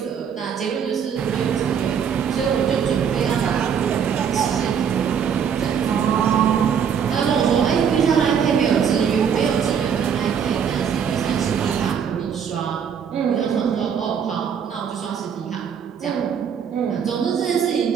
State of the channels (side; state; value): left; quieter; 7.6 dB